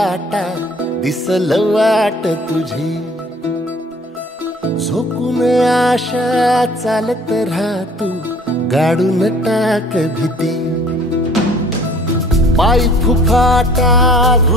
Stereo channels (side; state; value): both; normal; correlation 0.53